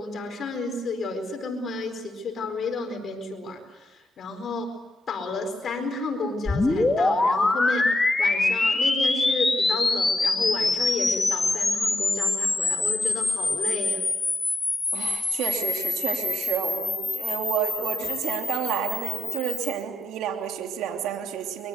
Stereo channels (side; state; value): both; normal; correlation 0.82